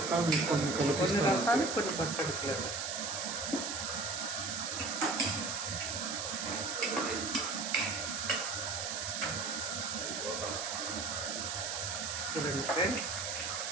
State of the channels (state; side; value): noise; right; hiss, 3 dB below the sound